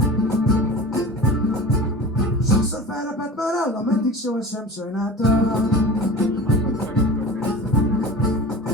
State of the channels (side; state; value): both; normal; correlation 0.36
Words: Sokszor felrepett már állam, eddig sohasem sajnáltam.